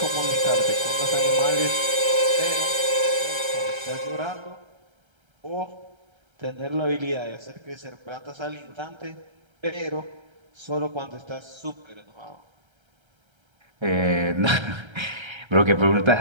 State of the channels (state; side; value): late; left; 1.3 ms